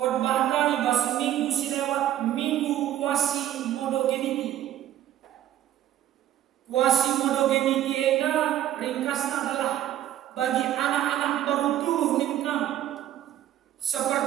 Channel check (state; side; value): quieter; left; 12.0 dB